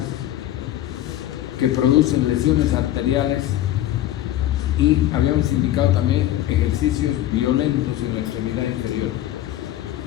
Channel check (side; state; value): right; quieter; 13.1 dB